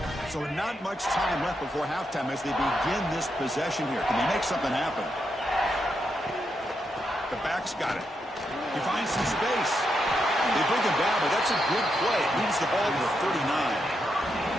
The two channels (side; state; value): both; normal; correlation 0.83